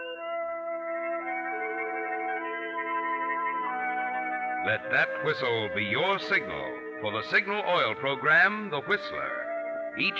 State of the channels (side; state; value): both; identical; correlation 1.00